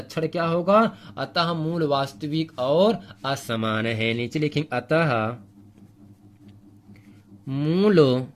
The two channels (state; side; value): identical; both; correlation 1.00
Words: क्या होगा, अतः मूल वास्तविक और असमान है। नीचे लिखेंगे अतः मूल